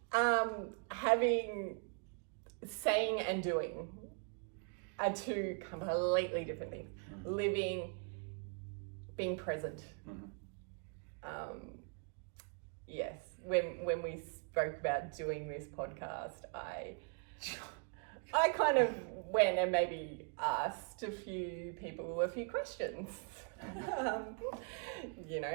Saying and doing are 2 completely different things. Living, being present. Yes. When we spoke about doing this podcast, I kind of went and maybe asked a few people a few questions.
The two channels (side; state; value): left; quieter; 39.6 dB